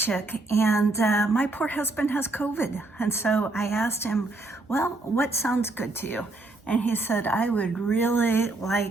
and my poor husband has COVID. And so I asked him, well, what sounds good to you? And he said, I would really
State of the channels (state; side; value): quieter; left; 3.0 dB